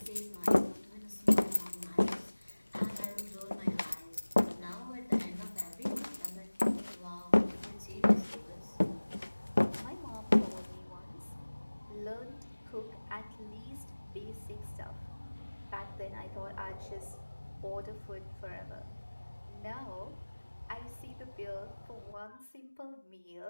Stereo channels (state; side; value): inverted; both; correlation -1.00